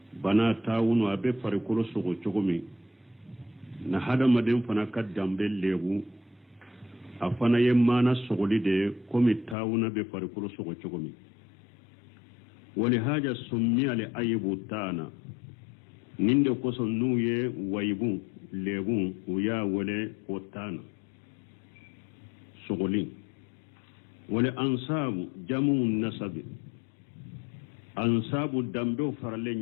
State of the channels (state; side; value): drops out; right; at 9.6 s